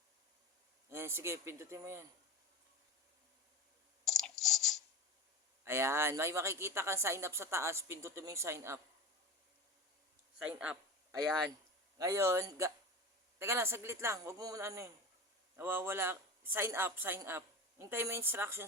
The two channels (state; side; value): normal; both; correlation 0.29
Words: Ayan, sige, pindutin mo yan. Ayan, may makikita kang sign up sa taas. Pindutin mo yung sign up. Sign up. Ayan. Ngayon, teka lang, saglit lang. Huwag mo muna ano yun. Nawawala. Sign up, sign up. Hintay mo yung